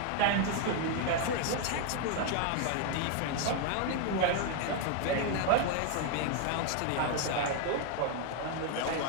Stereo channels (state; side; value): different; both; correlation 0.00